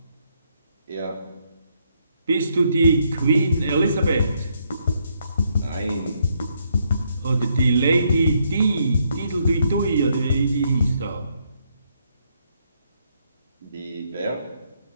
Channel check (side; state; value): both; inverted; correlation -0.74